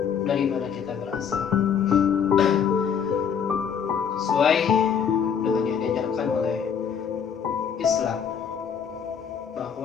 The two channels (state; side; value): quieter; right; 7.4 dB